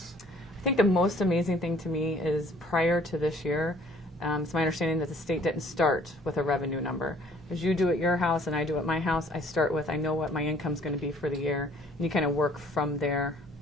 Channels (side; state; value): both; normal; correlation 0.58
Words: I think the most amazing thing to me is prior to this year, it's my understanding that the state didn't start with a revenue number. As you do at your house and I do at my house, I start with, I know what my income's going to be for the year, and you kind of work from there.